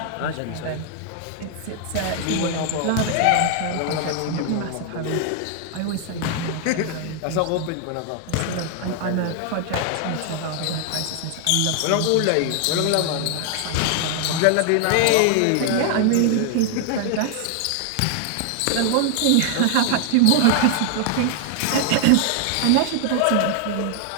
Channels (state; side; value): different; both; correlation 0.00